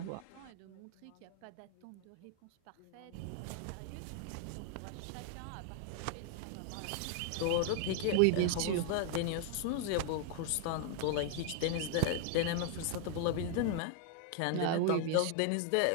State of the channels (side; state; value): both; different; correlation 0.00